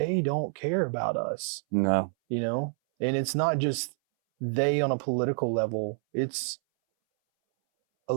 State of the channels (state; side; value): silent; left; 59 dB below the other